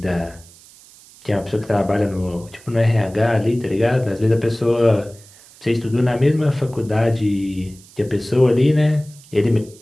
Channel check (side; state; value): right; noise; hiss, 24 dB below the sound